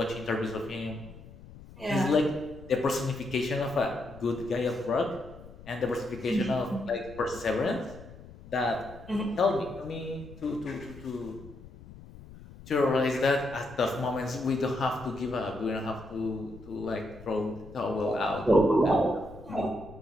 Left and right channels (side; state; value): left; noise; rumble, 18 dB below the sound